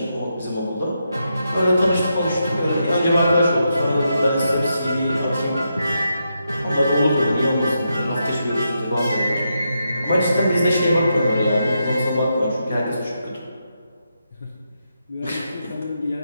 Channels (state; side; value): inverted; both; correlation -0.84